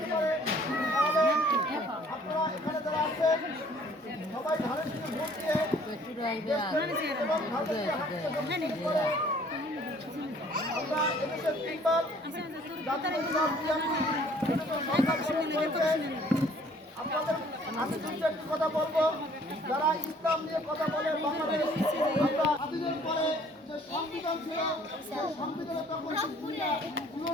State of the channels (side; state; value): both; normal; correlation 0.57